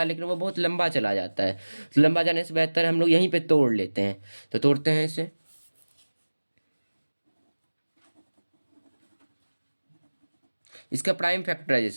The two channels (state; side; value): inverted; both; correlation -1.00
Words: लेकिन वो बहुत लंबा चला जाता है। तो लंबा जाने से बेहतर हम लोग यहीं पे तोड़ लेते हैं। तो तोड़ते हैं इसे। इसका प्राइम